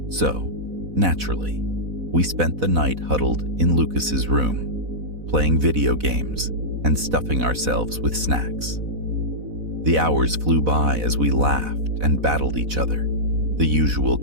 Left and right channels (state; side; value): late; left; 4.0 ms